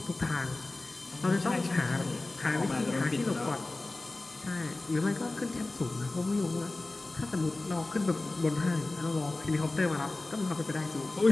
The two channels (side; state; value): right; quieter; 3.1 dB